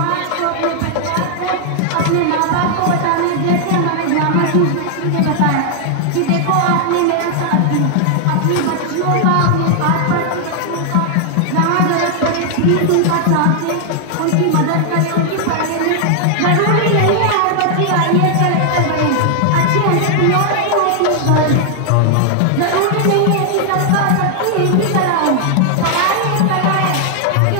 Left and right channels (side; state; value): both; different; correlation 0.00